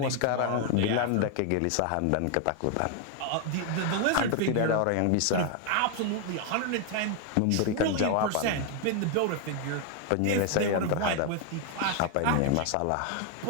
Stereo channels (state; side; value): different; both; correlation 0.00